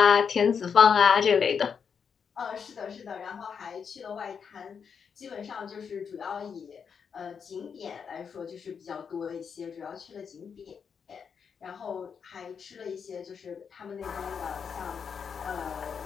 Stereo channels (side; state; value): right; quieter; 6.6 dB